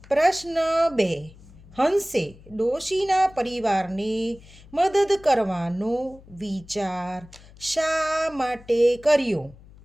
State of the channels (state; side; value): noise; left; hum, 22 dB below the sound